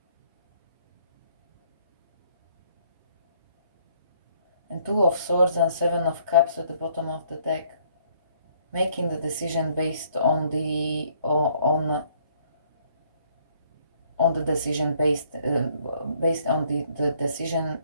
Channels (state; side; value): inverted; both; correlation -0.65